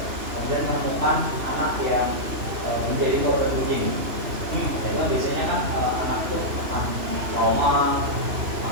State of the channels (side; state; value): left; late; 3.0 ms